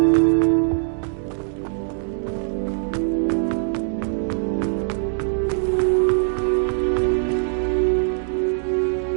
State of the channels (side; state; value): left; silent; digital silence